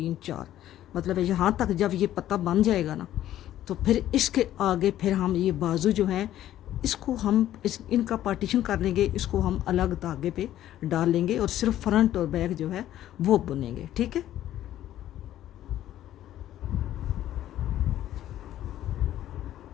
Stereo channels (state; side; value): quieter; right; 12.6 dB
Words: 4, मतलब यहाँ तक जब ये पत्ता बन जाएगा ना, तो फिर इसके आगे फिर हम ये बाजू जो है इसको हम इनका पार्टीशन कर लेंगे, इसको हम अलग धागे पे डाल लेंगे, और सिर्फ फ्रंट और बैक जो है वो बुनेंगे। ठीक है,